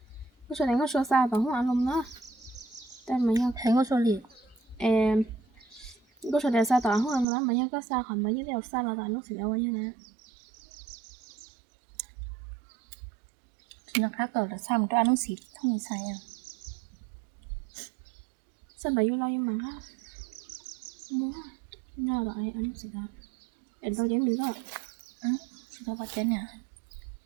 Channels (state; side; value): drops out; left; at 7.2 s